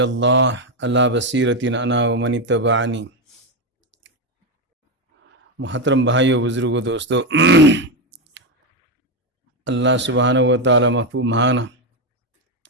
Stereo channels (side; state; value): both; normal; correlation 0.09